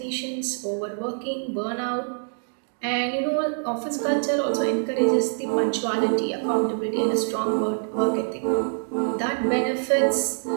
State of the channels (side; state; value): left; silent; 62 dB below the other